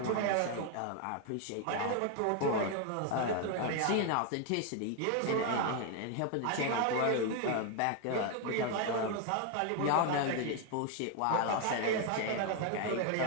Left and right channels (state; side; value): different; both; correlation 0.01